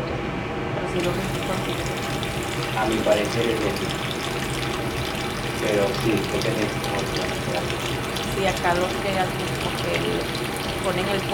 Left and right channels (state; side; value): identical; both; correlation 1.00